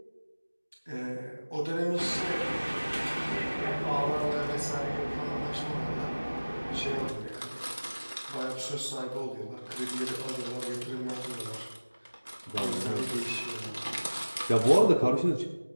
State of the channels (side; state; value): both; inverted; correlation -1.00